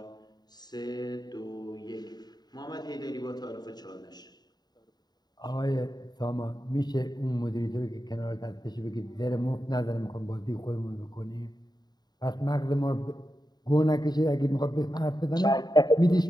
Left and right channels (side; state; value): right; late; 0.20 ms